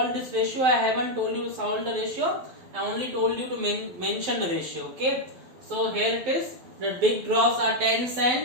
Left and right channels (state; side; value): late; left; 12 ms